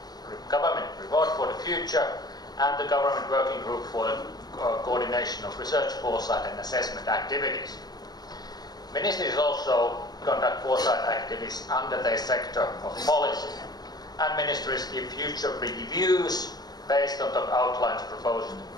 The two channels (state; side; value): late; right; 0.19 ms